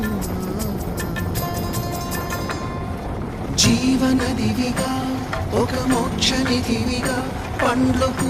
జీవనదివిగా ఒక మోక్షనిధివిగా పండ్లు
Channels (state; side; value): identical; both; correlation 1.00